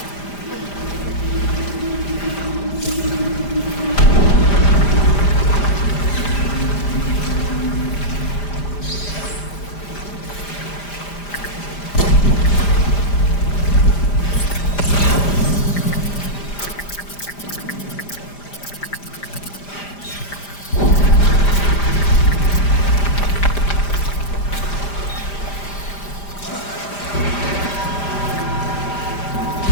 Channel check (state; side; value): late; right; 5.0 ms